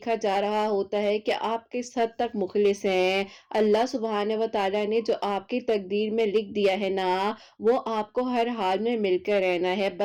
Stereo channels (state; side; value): identical; both; correlation 1.00